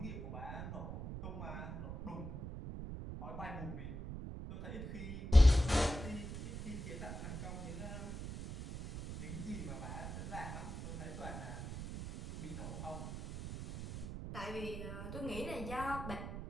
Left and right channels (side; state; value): right; noise; rumble, 7 dB below the sound